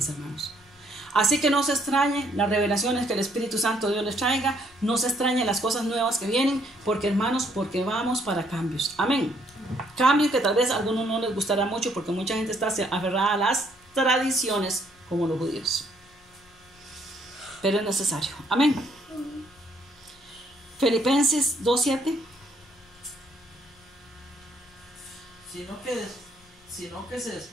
hermanos. Así que no se extrañe las revelaciones que el Espíritu Santo Dios les traiga, no se extrañe las cosas nuevas que vienen, porque hermanos, porque vamos para cambios. Amén. Cambios que tal vez a algunos no les gustará mucho, porque mucha gente está aferrada a las tradiciones como los judíos. Pero es necesario. Amén. Filipenses 2:7. Sino que se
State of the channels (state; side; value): noise; left; rumble, 30 dB below the sound